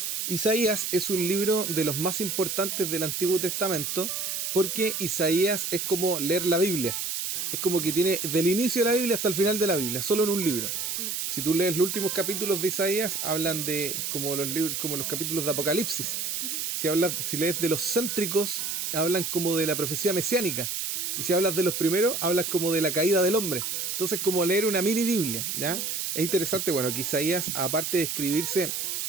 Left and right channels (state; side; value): noise; right; hiss, 2 dB below the sound